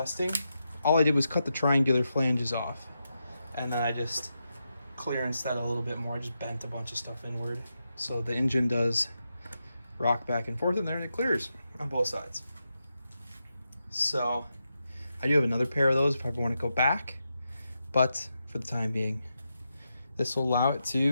All I did was cut the triangular flanges off, and then I just clearanced that a little bit more. I just bent a bunch of stuff inward, so the engine does rock back and forth in there, and it clears on both sides. So I do have another pair of those if I ever want to go back, but for the time being, this will allow it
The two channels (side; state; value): both; inverted; correlation -0.87